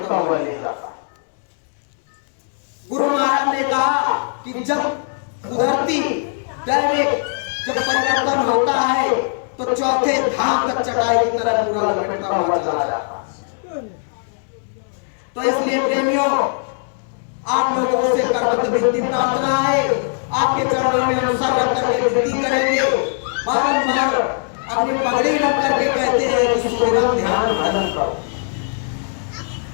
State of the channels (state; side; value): silent; right; digital silence